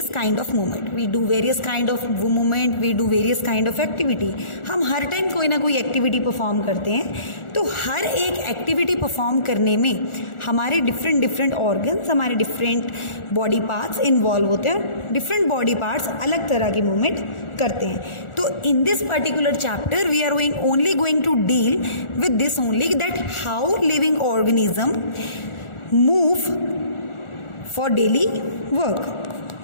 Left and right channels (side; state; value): right; late; 1.4 ms